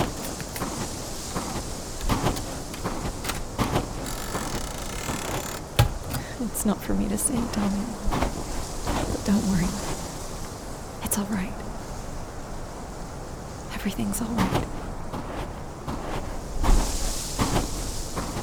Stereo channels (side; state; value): both; identical; correlation 1.00